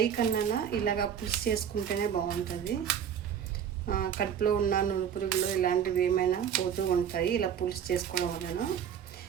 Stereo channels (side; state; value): left; quieter; 8.6 dB